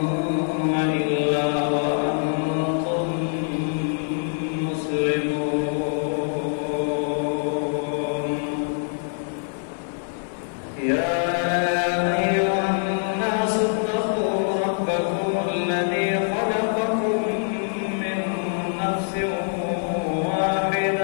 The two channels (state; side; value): silent; right; digital silence